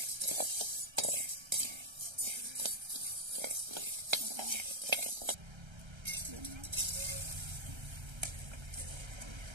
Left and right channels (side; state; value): left; late; 1.3 ms